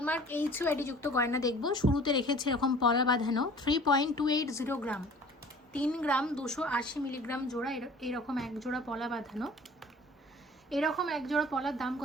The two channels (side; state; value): both; normal; correlation 0.47